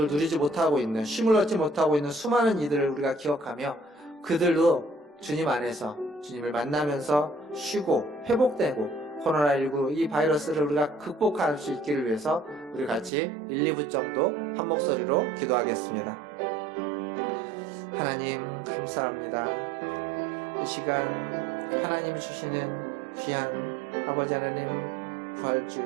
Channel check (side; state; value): left; drops out; at 13.1 s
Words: 누리지 못하고 있는, 쉼을 얻지 못하고 있는 수많은 이들을 우리가 기억하며 그들도 주님 안에서 주님을 만나면서 쉬고 회복되고 코로나19 이 바이러스를 우리가 극복할 수 있기를 위해서 우리 같이 1, 2분 정도 한 목소리로 기도하겠습니다. 하나님 감사합니다. 이 시간 하나님 주시는 귀한 아버지 하나님 부활주일,